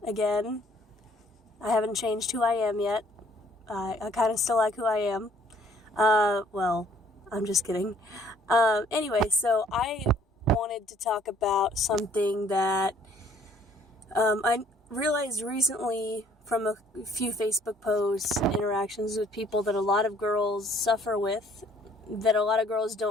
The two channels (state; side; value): normal; both; correlation 0.60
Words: again. I haven't changed who I am yet. I kind of still like who I am. Well, I'm just kidding. Anyway, so I wanted to talk about something that I realized recently from a few Facebook posts, interactions with people that a lot of girls suffer with, that a lot of girls